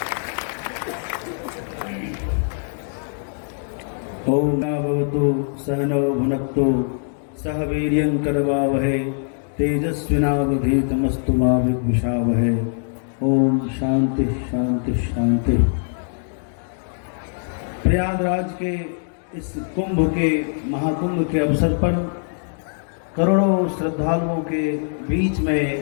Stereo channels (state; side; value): silent; right; digital silence